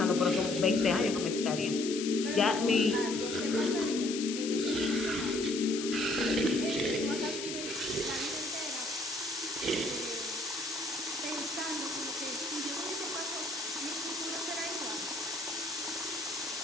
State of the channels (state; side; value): noise; left; hiss, 6 dB below the sound